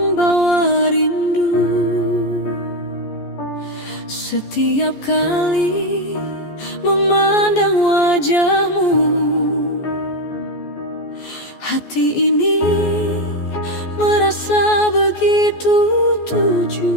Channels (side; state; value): right; late; 14 ms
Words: rindu. Setiap kali memandang wajahmu, hati ini merasa begitu